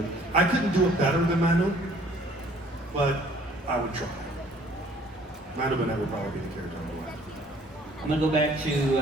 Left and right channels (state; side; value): normal; both; correlation 0.57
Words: I couldn't do it better than Manu, but I would try. Manu Bennett would probably be the character I would like. I'm gonna go back